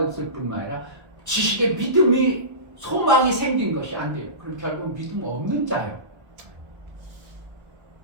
뿐만 아니라 지식의 믿음이 소망이 생긴 것이 안 돼요. 그럼 결국 믿음 없는 자예요.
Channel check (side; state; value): left; late; 1.3 ms